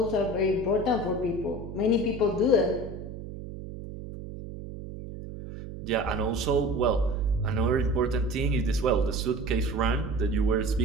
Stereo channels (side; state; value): right; noise; hum, 10 dB below the sound